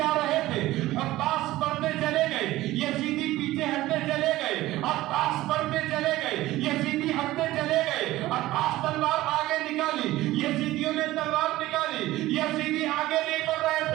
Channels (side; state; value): left; quieter; 16.7 dB